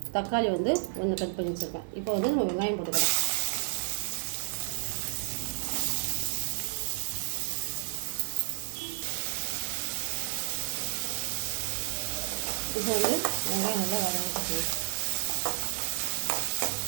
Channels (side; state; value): left; silent; digital silence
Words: தக்காளி வந்து 1 கட் பண்ணி வச்சுருக்கேன். இப்போ வந்து நம்ம வெங்காயம் போட்டுக்கலாம். இப்போ வந்து வெங்காயம் நல்லா வதங்கிட்டு